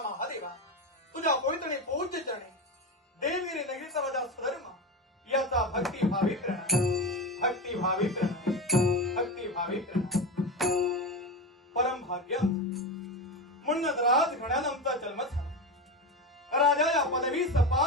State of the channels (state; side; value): normal; both; correlation 0.20